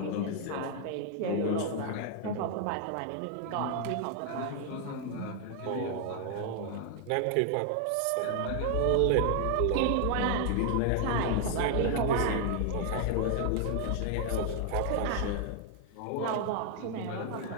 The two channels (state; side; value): different; both; correlation 0.00